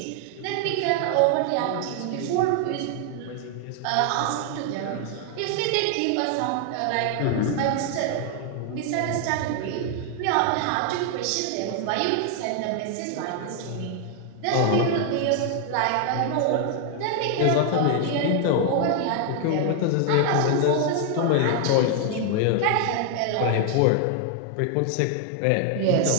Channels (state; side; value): different; both; correlation 0.00